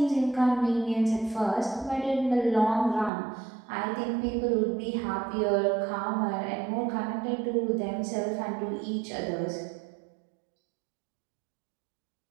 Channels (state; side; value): drops out; left; at 3.1 s